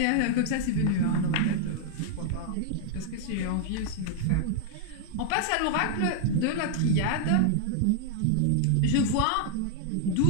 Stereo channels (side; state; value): both; different; correlation 0.00